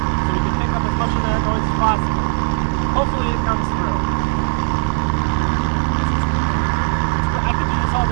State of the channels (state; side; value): silent; left; 67 dB below the other